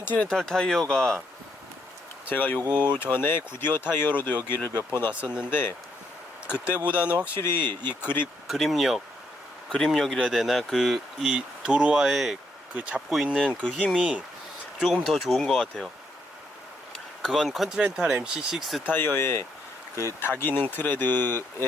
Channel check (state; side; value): normal; both; correlation 0.75